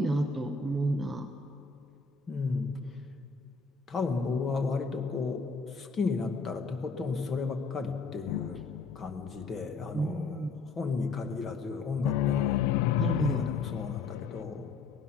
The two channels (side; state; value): right; quieter; 4.1 dB